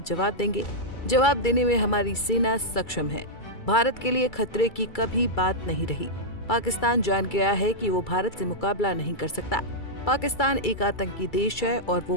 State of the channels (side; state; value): right; late; 2.3 ms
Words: जवाब देंगे। जवाब देने में हमारी सेना सक्षम है। भारत के लिए खतरे की कभी बात नहीं रही। पाकिस्तान जान गया है कि वो भारत से मुकाबला नहीं कर सकता। पाकिस्तान एक आतंकी देश है और वो